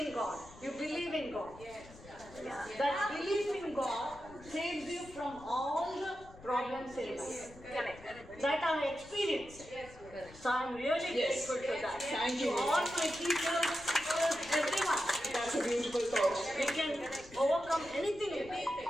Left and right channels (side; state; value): left; noise; rumble, 20 dB below the sound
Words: in God. You believe in God. That belief in God saves you from all the problems in life. That I experienced. So I'm really grateful to that. Thank you. To all my teachers, everyone. That's a beautiful thought. We can overcome anything in life.